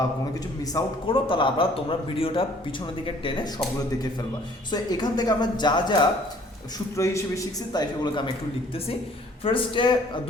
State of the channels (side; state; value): both; normal; correlation 0.57